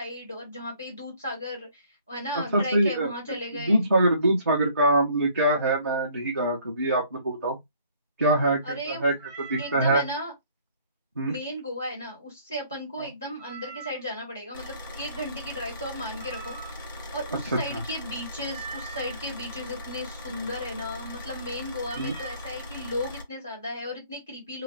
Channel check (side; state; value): both; inverted; correlation -0.58